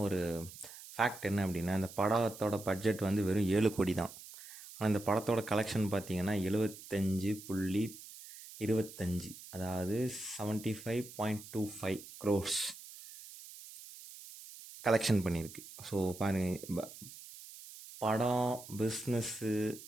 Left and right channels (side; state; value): right; noise; hiss, 15 dB below the sound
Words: ஒரு ஃபேக்ட் என்ன அப்படின்னா, இந்த படத்தோட பட்ஜெட் வந்து வெறும் 7 கோடி தான். ஆனால் இந்த படத்தோட கலெக்ஷன் பார்த்தீங்கன்னா 75.25, அதாவது 75.25 crores கலெக்ஷன் பண்ணியிருக்கு. ஸோ பாருங்கள், படம் பிஸ்னஸ்ஸு